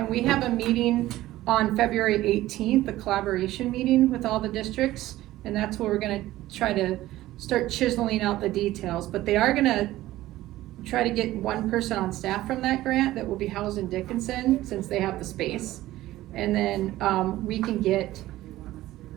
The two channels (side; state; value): left; quieter; 15.8 dB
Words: we have a meeting on February 18th, a collaboration meeting with all the districts. And that's where we're gonna try to start chiseling out the details. But they are gonna try to get one person on staff from that grant that will be housed in Dickinson, since they have the space. And then, we can